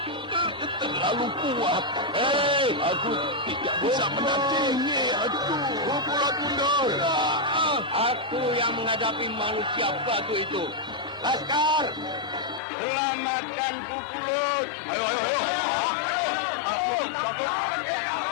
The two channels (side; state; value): right; drops out; at 12.6 s